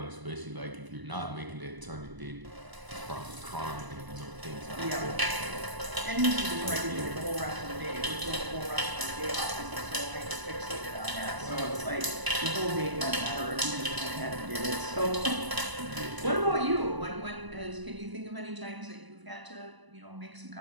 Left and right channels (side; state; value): left; late; 1.0 ms